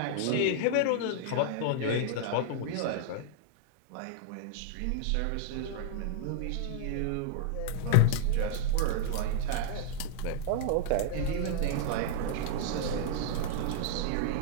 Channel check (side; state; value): both; different; correlation -0.01